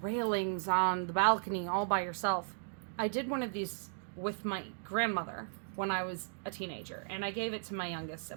on the balcony all by yourself. I did one of these with my grandmother when I was a teenager, and I gave it to my youngest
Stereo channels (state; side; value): silent; left; digital silence